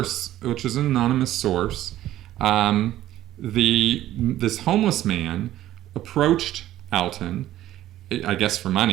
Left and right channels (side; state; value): left; quieter; 13.6 dB